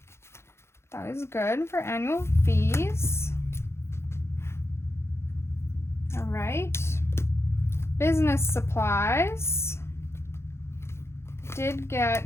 That is good for annual fees. All right. business supplies did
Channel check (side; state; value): right; late; 0.13 ms